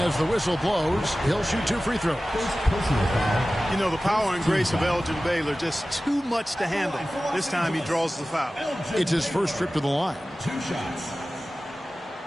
as the whistle blows. He'll shoot 2 free throws. You know, the power and grace of Elgin Baylor, just too much to handle. This time he draws the foul. It's his first trip to the line. 2 shots.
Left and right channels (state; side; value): normal; both; correlation 0.96